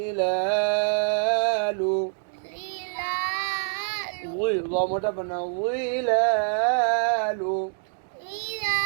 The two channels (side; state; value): left; silent; 61 dB below the other